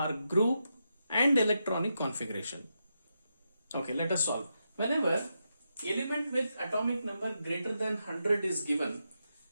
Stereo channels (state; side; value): inverted; both; correlation -0.86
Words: group and electronic configuration. Okay, let us solve. Whenever element with atomic number greater than 100 is given,